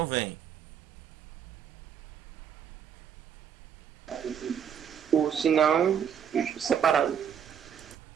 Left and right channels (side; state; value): left; quieter; 8.2 dB